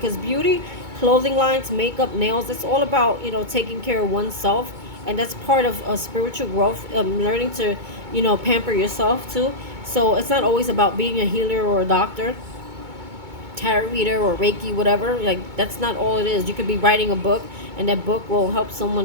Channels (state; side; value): late; left; 2.2 ms